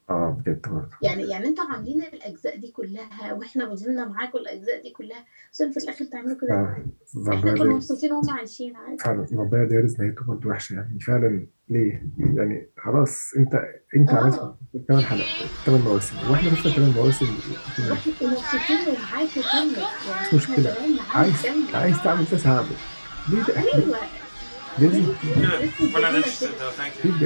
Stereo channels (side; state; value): both; inverted; correlation -1.00